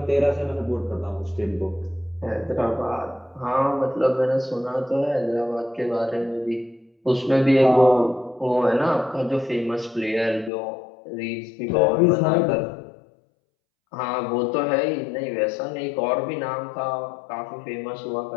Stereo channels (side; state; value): right; drops out; at 10.5 s